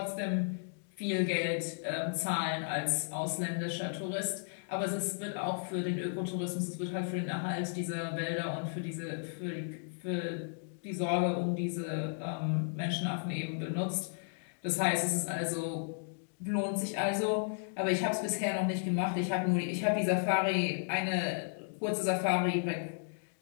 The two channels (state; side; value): silent; right; digital silence